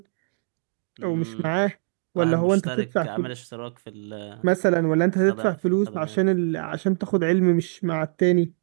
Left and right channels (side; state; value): left; silent; digital silence